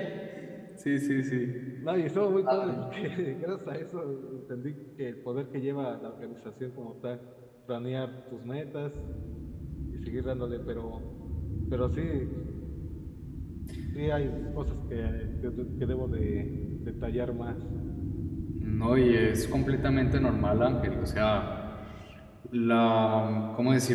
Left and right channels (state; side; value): identical; both; correlation 1.00